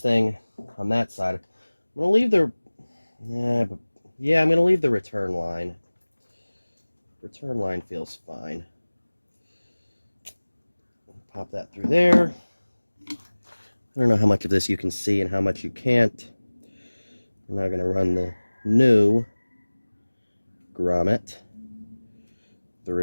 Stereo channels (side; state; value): both; inverted; correlation -1.00